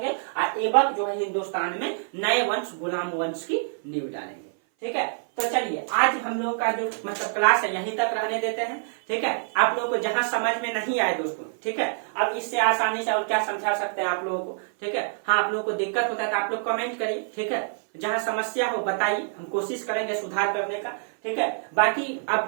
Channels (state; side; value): silent; left; 57 dB below the other